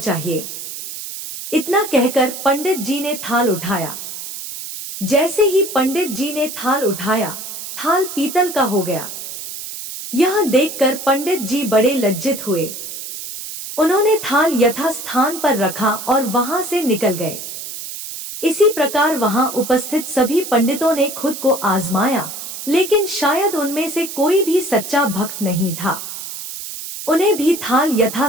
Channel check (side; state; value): right; noise; hiss, 9 dB below the sound